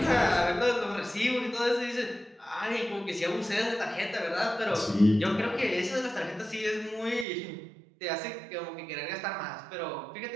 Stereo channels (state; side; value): drops out; left; at 7.2 s